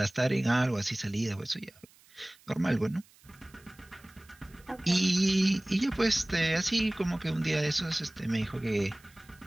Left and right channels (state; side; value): noise; right; hiss, 28 dB below the sound